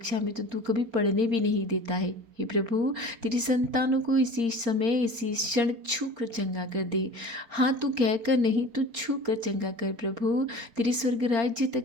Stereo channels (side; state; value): left; late; 4.3 ms